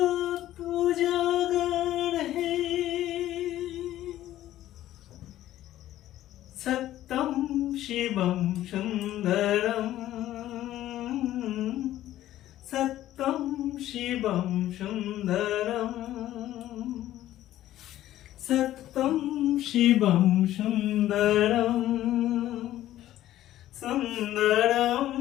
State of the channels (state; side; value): quieter; right; 13.7 dB